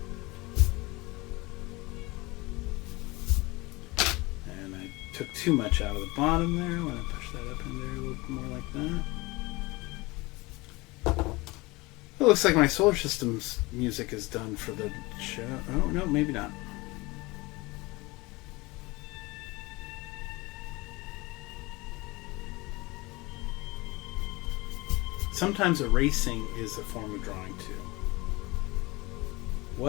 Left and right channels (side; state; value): right; quieter; 23.2 dB